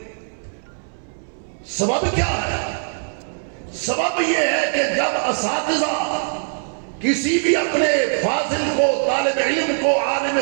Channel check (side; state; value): left; silent; digital silence